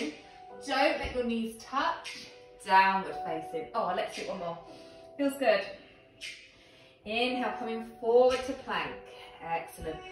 Don't let your knees touch. Downward facing. Oh, let's do it one more. Feels good. Inhale, coming forward to plank. Excellent.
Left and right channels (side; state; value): both; identical; correlation 1.00